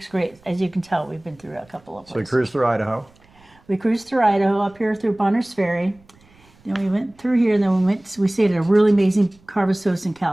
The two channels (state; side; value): noise; right; rumble, 30 dB below the sound